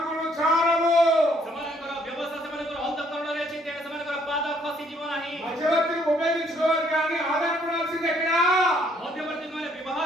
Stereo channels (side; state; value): both; normal; correlation 0.66